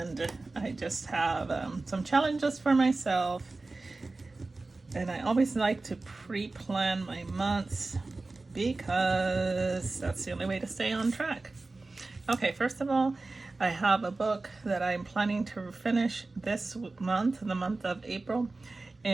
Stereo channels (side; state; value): left; quieter; 3.4 dB